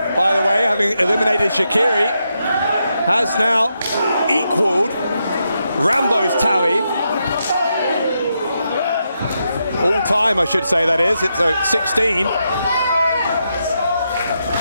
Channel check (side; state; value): both; inverted; correlation -0.83